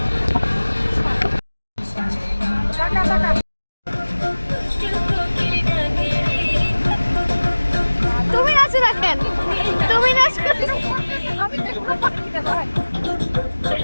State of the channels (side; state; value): both; inverted; correlation -1.00